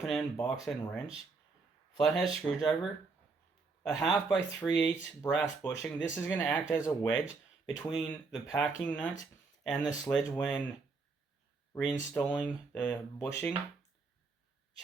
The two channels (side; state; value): left; quieter; 4.3 dB